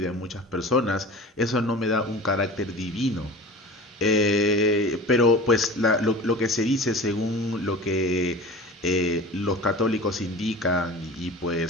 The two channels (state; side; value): normal; both; correlation 0.36